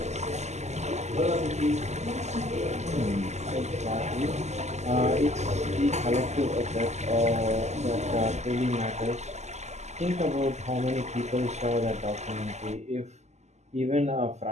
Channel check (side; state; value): left; late; 0.33 ms